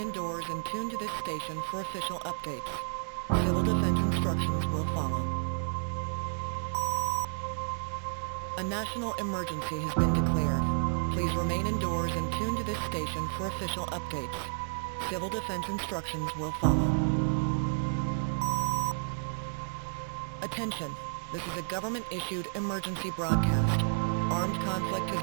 and tune to this station for official updates. Civil defense instructions will follow. A national emergency has been declared. Please remain indoors and tune to this station for official updates. Civil defense instructions will follow. Attention, this is a government-issued emergency broadcast. Armed conflict has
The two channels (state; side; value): silent; left; 57 dB below the other